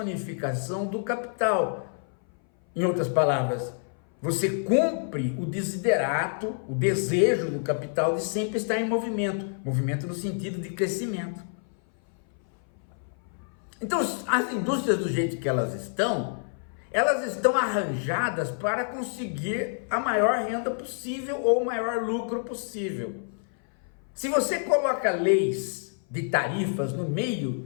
do capital. Em outras palavras, você cumpre o desiderato, o desejo do capital de sempre estar em movimento, movimento no sentido de crescimento. Então, as indústrias do jeito que elas estão arranjadas para conseguir a maior renda possível ou o maior lucro possível. Se você coloca leis de tarifas no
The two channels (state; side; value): silent; right; 58 dB below the other